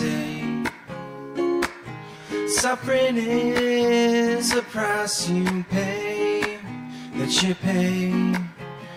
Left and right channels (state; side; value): identical; both; correlation 1.00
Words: Suffering is a price you pay, that you pay.